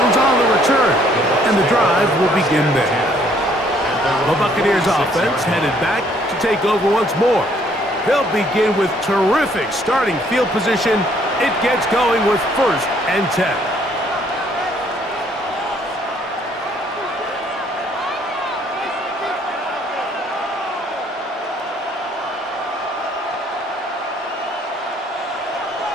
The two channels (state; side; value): normal; both; correlation 0.64